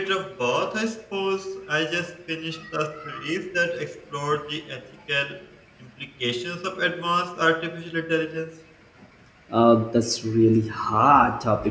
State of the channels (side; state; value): both; identical; correlation 1.00